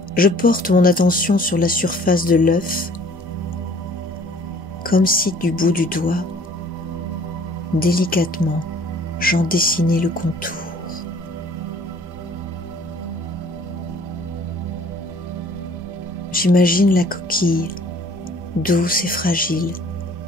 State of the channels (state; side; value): normal; both; correlation 0.54